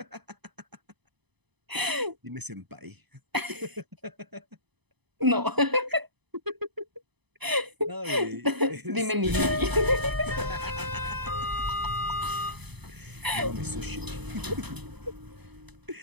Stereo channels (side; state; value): left; late; 0.99 ms